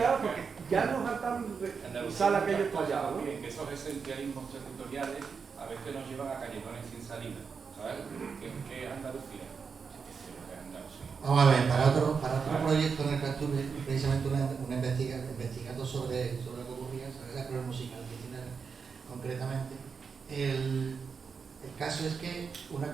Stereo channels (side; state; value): left; quieter; 5.7 dB